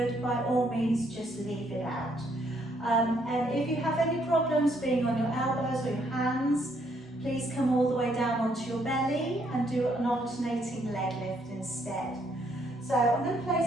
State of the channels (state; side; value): normal; both; correlation 0.70